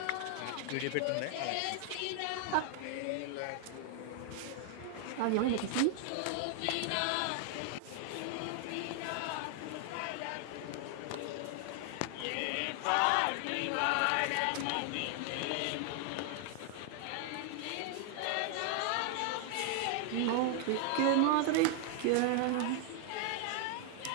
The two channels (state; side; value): different; both; correlation 0.00